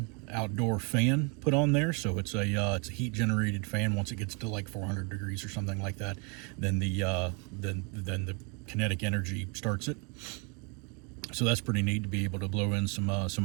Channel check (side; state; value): left; quieter; 33.7 dB